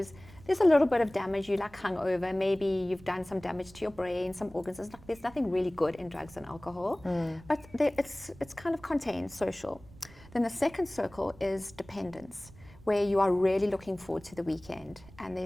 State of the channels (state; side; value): noise; right; rumble, 21 dB below the sound